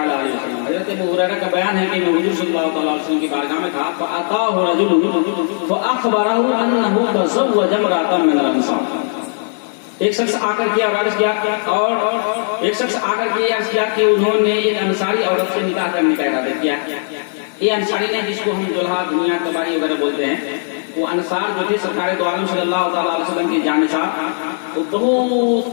علیہ وسلم. حضرت ابو ہریرہ کا بیان ہے کہ میں حضور صلی اللہ تعالیٰ علیہ وسلم کی بارگاہ میں تھا. فأتاه رجل فأخبره أنه تزوج امرأة من الأنصار. ایک شخص آ کر کے عرض کیا کہ انہوں نے ایک انصاری عورت سے نکاح کرنے کا ارادہ کیا. یہ انصاری نے جس کو ہم دلہا دنیا تباری وغیرہ بولتے ہیں، وہ انصار جو تھے سرکار دو عالم صلی اللہ تعالیٰ علیہ وسلم کے جانشار، وہ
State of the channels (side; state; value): right; silent; digital silence